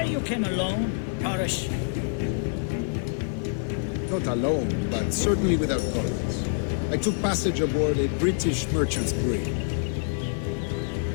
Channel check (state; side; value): silent; right; 61 dB below the other